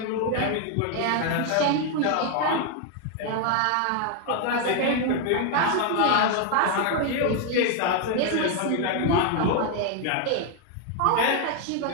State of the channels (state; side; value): different; both; correlation 0.01